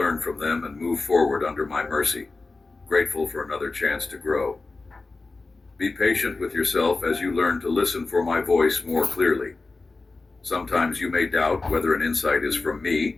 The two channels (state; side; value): quieter; right; 3.6 dB